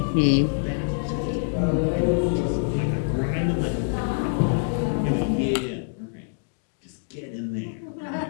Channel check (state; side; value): silent; right; digital silence